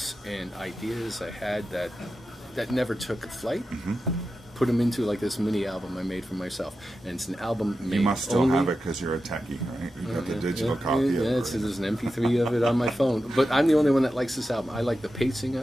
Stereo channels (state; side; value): normal; both; correlation 0.91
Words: and ideas I had that never took flight, put them into like this mini album I made for myself, and it's an album made. You must still have it because you're a techie, right? You got the digital copy of it. There's an MP3 of it on my phone, but I'm the only one that likes this album. I like the pacing